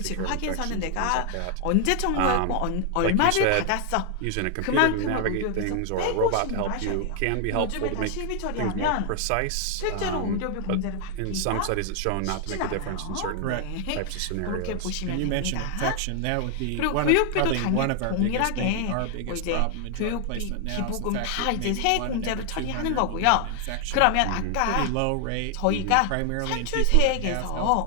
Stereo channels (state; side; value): different; both; correlation 0.00